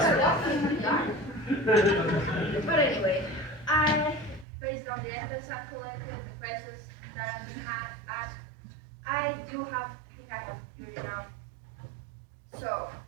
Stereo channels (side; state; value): left; drops out; at 4.5 s